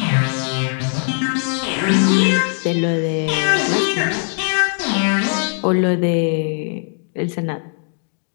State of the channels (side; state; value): right; silent; 66 dB below the other